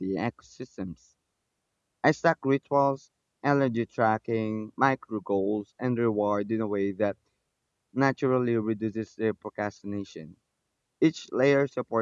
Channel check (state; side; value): identical; both; correlation 1.00